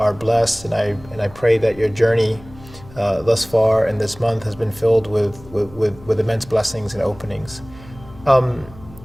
blessed, and I pray that your journey thus far in this month has been filled with immense blessings and openings. One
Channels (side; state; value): left; noise; hum, 20 dB below the sound